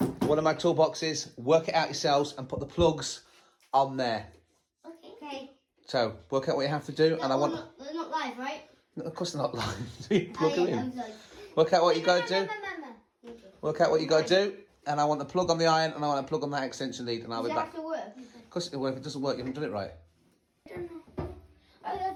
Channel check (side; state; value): both; identical; correlation 1.00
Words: One of my toolboxes. Work it out yourselves and put the plugs on there. Okay. So work out what you have to do, and I want. They're not live, right? No, of course they're not live. So you plug them in. I'm sorry. Work out what you got to do. Work out what you got to do, and I want the plug on the iron, and I want a plug on that extension lead, and I'll be back. Does it have to work? Of course it'll work. If it doesn't work, you haven't done it right. I don't know. I've